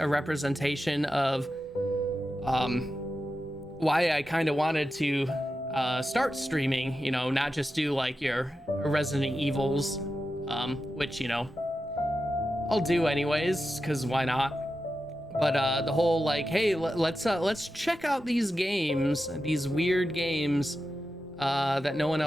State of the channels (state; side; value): normal; both; correlation 0.90